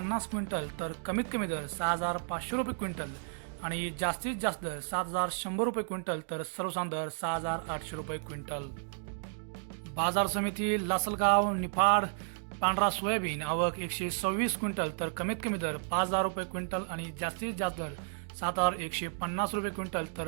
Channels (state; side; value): silent; left; digital silence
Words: क्विंटल तर कमीत कमी दर 6,500 रुपये क्विंटल आणि जास्तीत जास्त दर 7,100 रुपये क्विंटल तर सर्वसाधारण दर 6,800 रुपये क्विंटल. बाजार समिती लासलगाव. निफाड. पांढरा सोयाबीन. आवक 126 क्विंटल तर कमीत कमी दर 5,000 रुपये क्विंटल आणि जास्तीत जास्त दर 7,150 रुपये क्विंटल